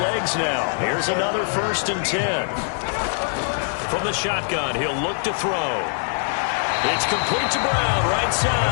now. Here's another 1st and 10. From the shotgun, he'll look to throw. It's complete to Brown, right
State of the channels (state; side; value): silent; right; 64 dB below the other